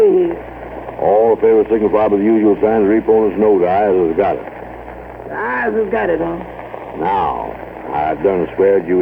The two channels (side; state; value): both; identical; correlation 1.00